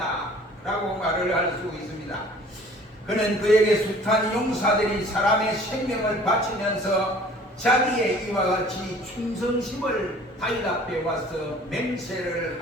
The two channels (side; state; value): both; normal; correlation 0.50